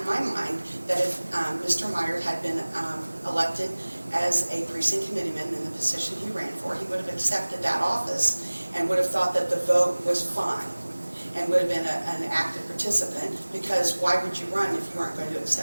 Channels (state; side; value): inverted; both; correlation -1.00